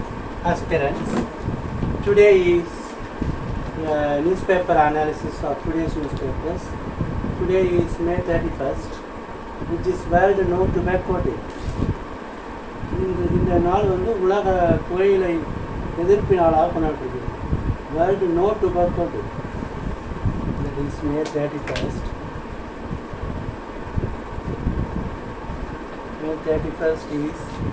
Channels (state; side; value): identical; both; correlation 1.00